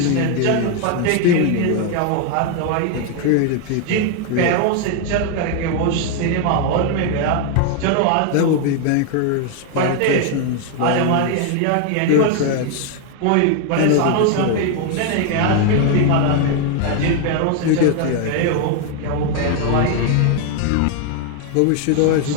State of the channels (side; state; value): both; different; correlation 0.01